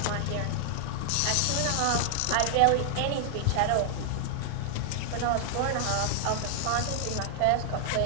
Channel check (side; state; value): both; different; correlation 0.00